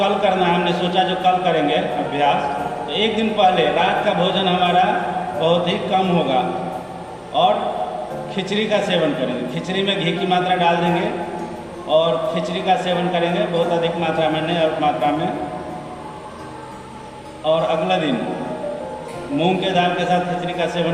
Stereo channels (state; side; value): identical; both; correlation 1.00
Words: करना है, हमने सोचा जो कल करेंगे अभ्यास, तो एक दिन पहले रात का भोजन हमारा बहुत ही कम होगा और खिचड़ी का सेवन करेंगे। खिचड़ी में घी की मात्रा डाल देंगे और खिचड़ी का सेवन करेंगे, बहुत अधिक मात्रा में नहीं, अल्प मात्रा में। और अगला दिन मूंग के दाल के साथ खिचड़ी का